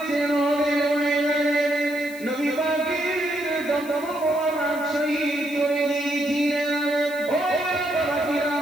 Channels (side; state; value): left; noise; hiss, 19 dB below the sound